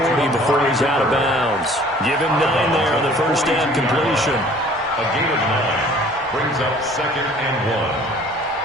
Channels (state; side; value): normal; both; correlation 0.52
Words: before he's out of bounds. Give him 9 there on the first down completion. A gain of 9 brings up 2nd and